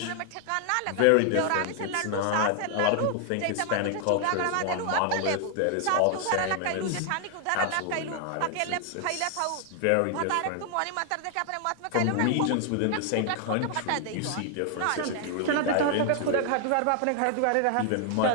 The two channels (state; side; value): different; both; correlation 0.00